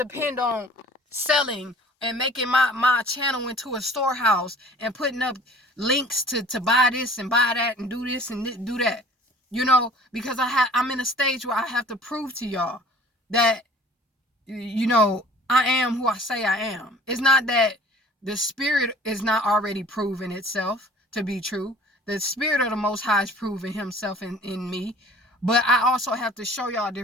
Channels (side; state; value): both; normal; correlation 0.48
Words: on selling and making my channel into a storehouse and putting up links to buy this and buy that and do this and do that, because I'm in a stage where I have to prove to y'all that, I am who I say I am. It's not that the spirit is not already proven itself to be true. The spirit of the Most High is proving himself in me. But I also have to show y'all